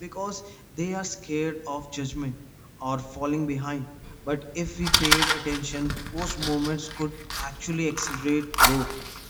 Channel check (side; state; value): both; identical; correlation 1.00